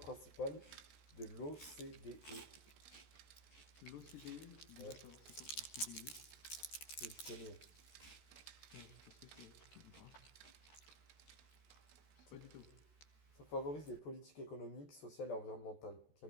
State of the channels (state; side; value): late; right; 14 ms